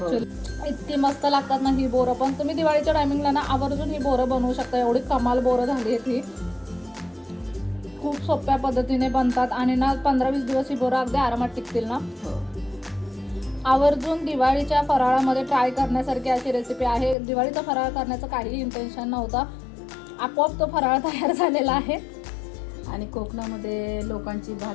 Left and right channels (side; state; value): right; drops out; at 17.2 s